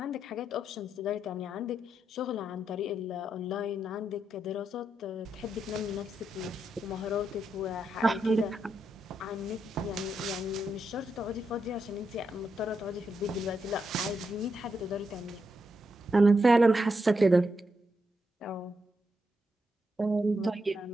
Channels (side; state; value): both; normal; correlation 0.83